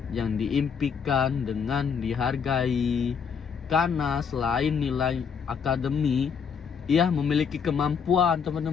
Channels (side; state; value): right; quieter; 6.6 dB